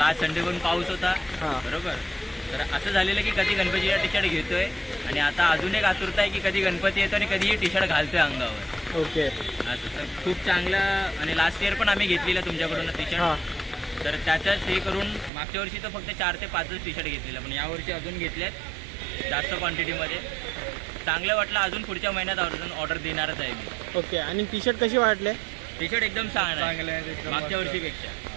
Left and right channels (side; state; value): left; drops out; at 15.3 s